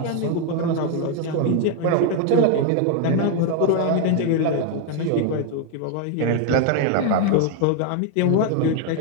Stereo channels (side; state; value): both; different; correlation 0.00